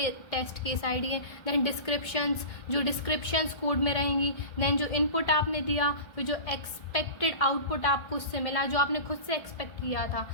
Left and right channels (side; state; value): right; late; 1.3 ms